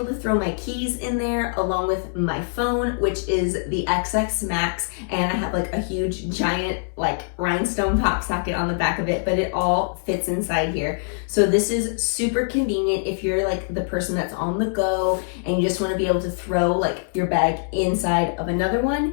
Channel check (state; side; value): silent; right; digital silence